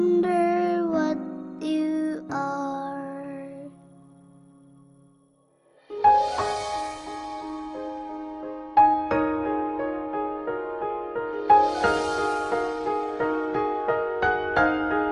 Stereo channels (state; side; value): identical; both; correlation 1.00